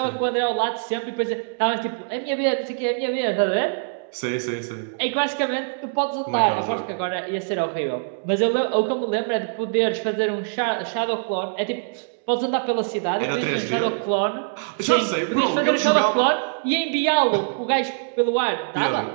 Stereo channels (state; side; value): silent; left; digital silence